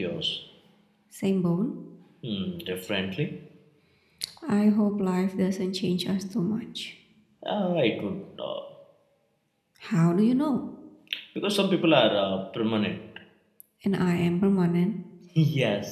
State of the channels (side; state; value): both; identical; correlation 1.00